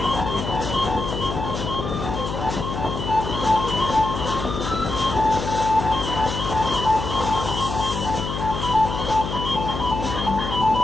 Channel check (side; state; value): left; noise; hum, 5 dB below the sound